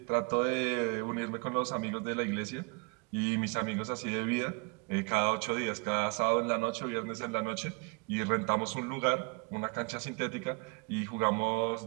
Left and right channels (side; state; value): left; quieter; 32.6 dB